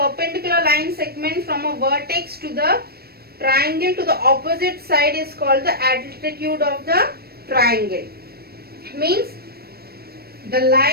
line segment from a vertex to the triangle to the opposite side is called the altitude of the triangle. Means the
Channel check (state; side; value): late; left; 0.45 ms